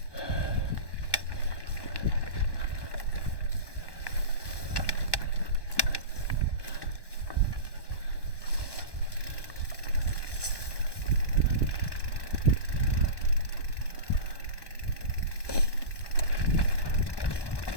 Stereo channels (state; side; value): late; right; 1.2 ms